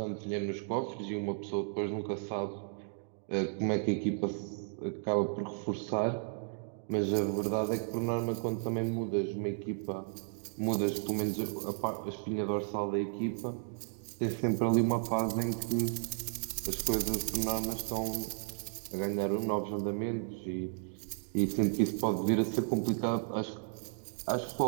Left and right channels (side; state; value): left; silent; digital silence